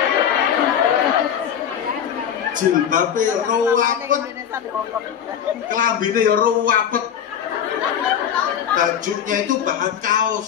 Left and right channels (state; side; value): quieter; right; 8.8 dB